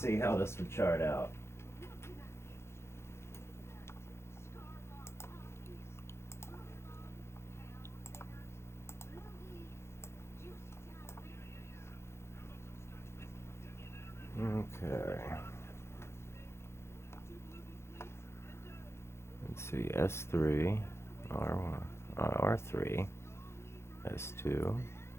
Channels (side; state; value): right; late; 0.13 ms